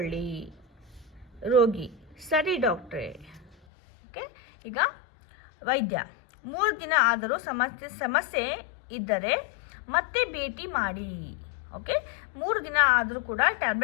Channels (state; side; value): drops out; right; at 3.6 s